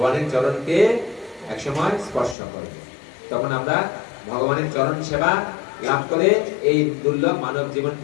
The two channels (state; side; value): drops out; right; at 2.4 s